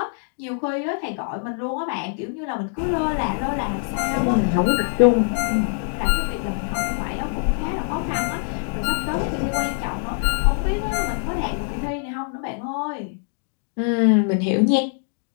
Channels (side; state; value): right; silent; 63 dB below the other